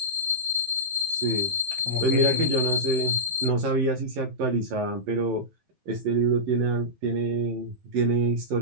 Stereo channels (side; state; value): left; late; 11 ms